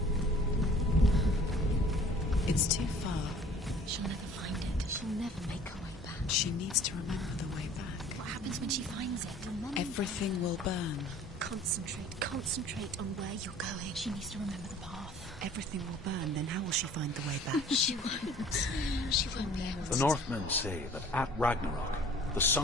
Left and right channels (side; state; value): both; normal; correlation 0.50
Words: It's too far. She'll never find it. She'll never make her way back. She needs to remember the way back. What happens when she finds it? Remember. Everything will burn. Concentrate on where you're going. She needs to remember the path. Everything will burn, then how will she find the way back? She won't. She won't be able to. The Northmen say that at Ragnarok, the